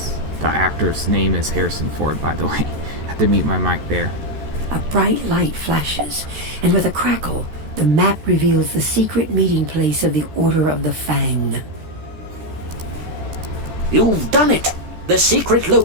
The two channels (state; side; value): late; left; 14 ms